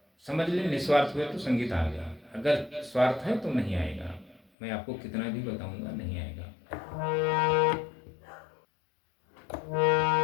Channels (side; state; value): right; drops out; at 4.4 s